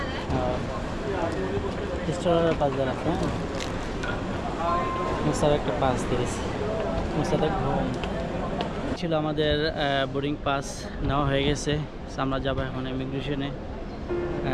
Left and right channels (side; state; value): both; identical; correlation 1.00